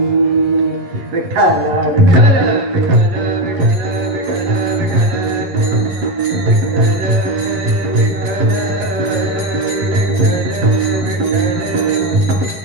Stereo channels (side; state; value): left; late; 11 ms